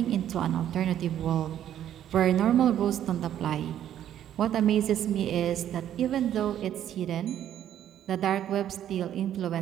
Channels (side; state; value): left; quieter; 10.9 dB